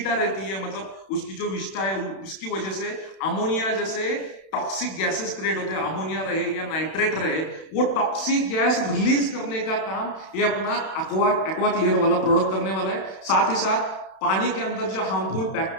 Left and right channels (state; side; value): late; right; 31 ms